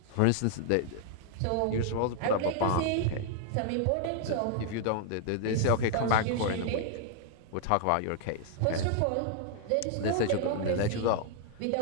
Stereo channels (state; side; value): different; both; correlation -0.01